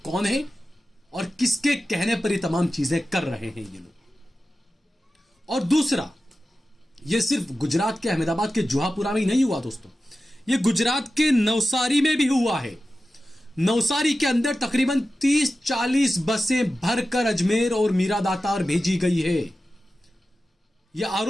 कौन हैं और किसके कहने पर ये तमाम चीजें कर रहे हैं ये लोग। और दूसरा, ये सिर्फ गुजरात के अहमदाबाद के जुहापुरा में ही नहीं हुआ दोस्तों, ये गुजरात के नवसारी में भी हुआ है। नवसारी के अंदर तकरीबन 30-40 बसें भरकर अजमेर और मीरा दातार भेजी गई है। यह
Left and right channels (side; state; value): both; normal; correlation 0.94